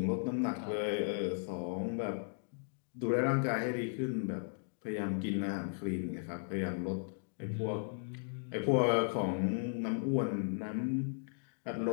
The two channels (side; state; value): right; silent; digital silence